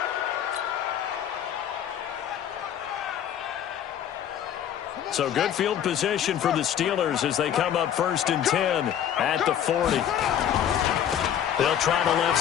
So good field position for the Steelers as they come up 1st and 10 at the 40. They'll try the left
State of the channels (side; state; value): right; quieter; 9.9 dB